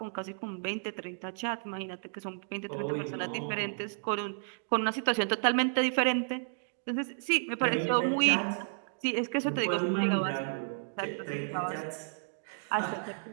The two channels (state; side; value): silent; left; digital silence